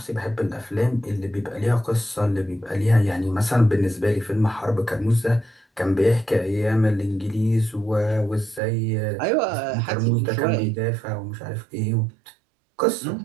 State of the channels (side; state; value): left; drops out; at 8.6 s